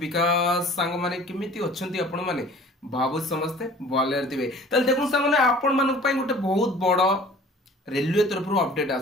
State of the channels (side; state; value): both; normal; correlation 0.48